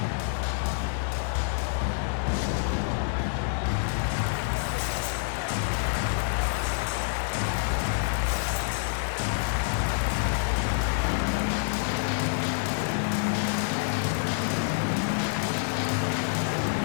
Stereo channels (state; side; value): silent; right; 60 dB below the other